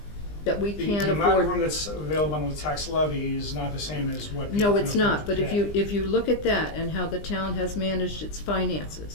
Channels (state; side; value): late; right; 20 ms